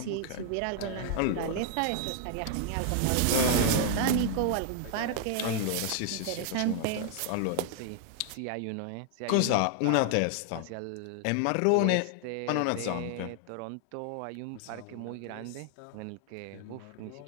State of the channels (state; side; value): different; both; correlation 0.00